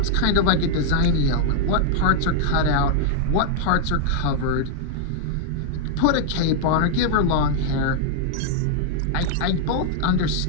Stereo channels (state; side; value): different; both; correlation 0.00